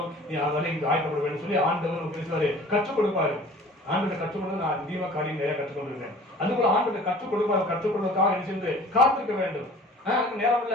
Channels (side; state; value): both; normal; correlation 0.46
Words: நீ அதனால இங்க ஆயத்தப்பட வேண்டும் சொல்லி ஆண்டவர் பேசுவாரு, கற்றுக் கொடுப்பாரு. ஆண்டவரை கற்றுக் கொடுத்து நான் அதிகமா காரியம் நிறைய கற்றுக் கொண்டிருக்கேன். அதுபோல ஆண்டவரை கற்றுக் கொடுப்பாரு, கற்றுக் கொடுப்பதற்காக என்ன செய்து காத்திருக்க வேண்டும். நேரம்